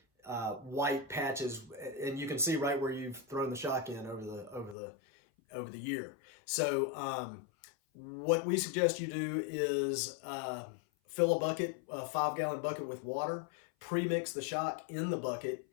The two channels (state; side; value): drops out; right; at 4.8 s